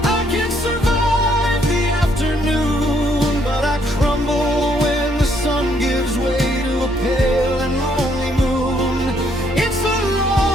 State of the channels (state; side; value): normal; both; correlation 0.69